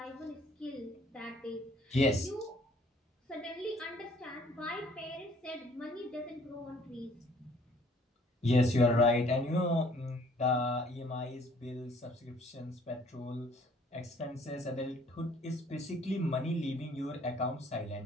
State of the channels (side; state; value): both; normal; correlation 0.58